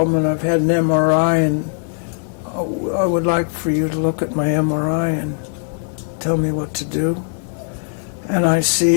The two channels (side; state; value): right; silent; 57 dB below the other